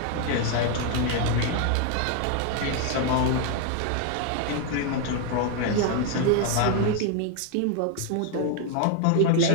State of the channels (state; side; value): different; both; correlation 0.01